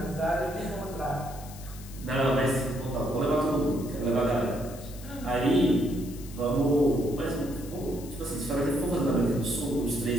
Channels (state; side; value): noise; left; hiss, 18 dB below the sound